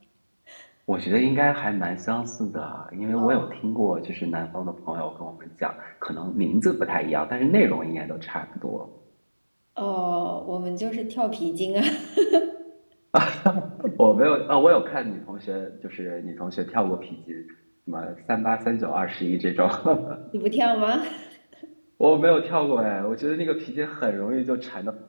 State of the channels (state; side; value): inverted; both; correlation -1.00